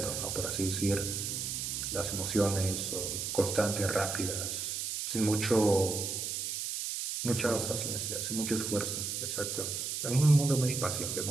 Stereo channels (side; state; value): right; noise; hiss, 3 dB below the sound